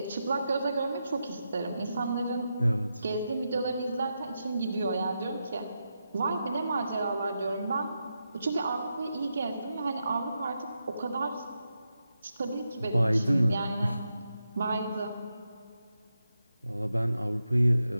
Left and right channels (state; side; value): inverted; both; correlation -0.87